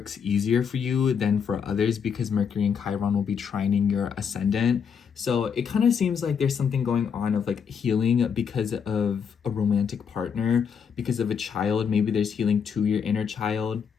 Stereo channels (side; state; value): right; quieter; 6.9 dB